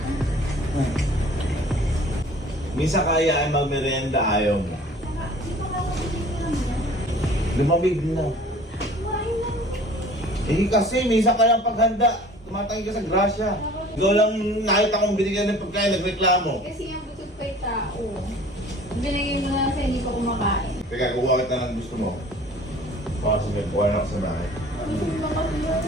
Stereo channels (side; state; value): both; normal; correlation 0.48